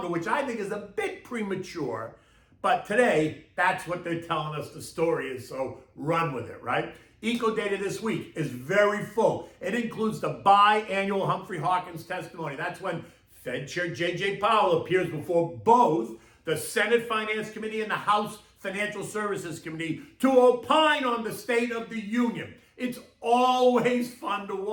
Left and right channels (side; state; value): both; identical; correlation 1.00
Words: which I think is a bit premature. But today, that's what they're telling us the story is, so run with it, right? Eco data this week is very full. It includes the biannual Humphrey Hawkins testimony. That's when Fed Chair J.J. Powell appears before both the Senate Finance Committee and the House Financial Services Committee to opine on the State of the Union. It's always fun to